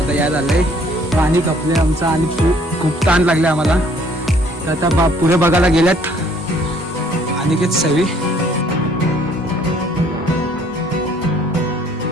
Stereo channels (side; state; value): both; normal; correlation 0.60